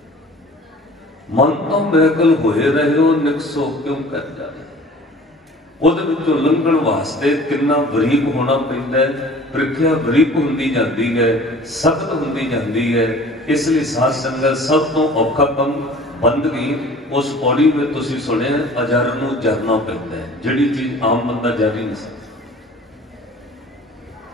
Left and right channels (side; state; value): both; normal; correlation 0.46